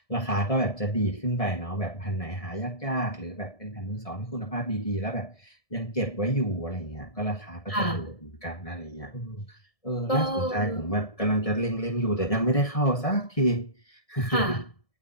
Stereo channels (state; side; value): late; right; 1.7 ms